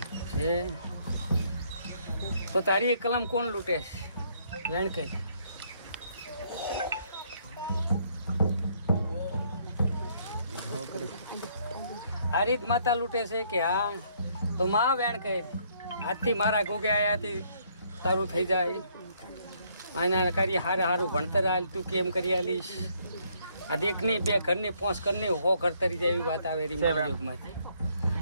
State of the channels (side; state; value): both; inverted; correlation -0.68